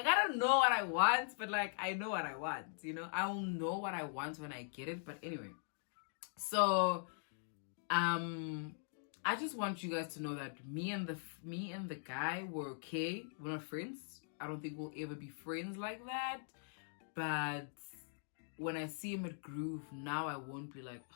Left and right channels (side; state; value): right; silent; digital silence